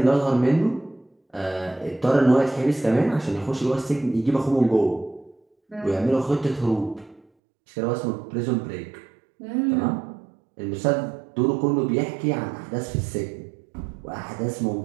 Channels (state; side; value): drops out; left; at 7.2 s